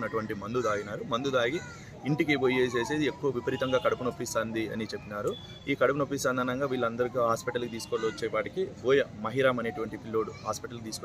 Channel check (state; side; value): identical; both; correlation 1.00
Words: మందు తాగి ఇంటికి పోయేసేసి ఎక్కువ విపరీతంగా కడుపు నొప్పిస్తుంది అని చెప్పినారు. ఈ కడుపు నొప్పిస్తుంది అనగా వీళ్ళందరికీ హాస్పిటల్కి తీసుకొని వచ్చేపాటికి మహిరామ్ అనేటువంటి పిల్లోడు హాస్పిటల్కి